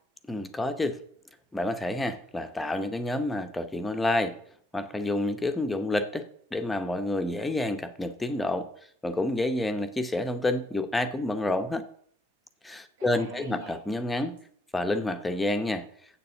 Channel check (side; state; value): both; normal; correlation 0.76